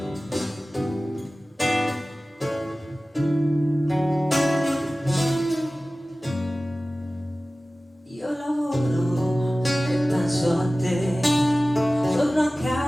Io lavoro e penso a te, torno a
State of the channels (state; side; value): normal; both; correlation 0.97